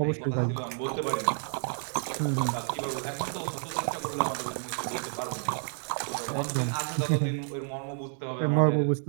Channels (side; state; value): left; silent; 57 dB below the other